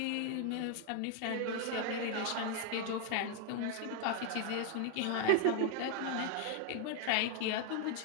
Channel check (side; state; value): both; different; correlation 0.00